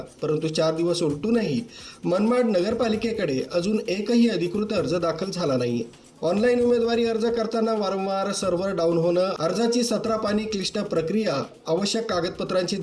परंतु 4 दिवस उलटूनही मनमाड नगरपालिकेकडे अजून एकही अधिकृत अर्ज दाखल झाला नाहीये। ऑनलाईन उमेदवारी अर्ज करताना वारंवार सर्व्हर डाऊन होणं, अर्जाची 17 पानी क्लिष्ट प्रक्रिया, आवश्यक कागदपत्रांची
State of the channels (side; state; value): both; identical; correlation 1.00